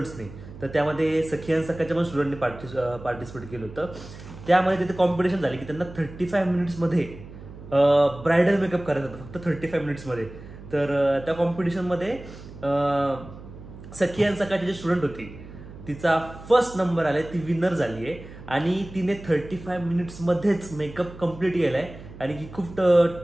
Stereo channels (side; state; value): right; noise; hum, 16 dB below the sound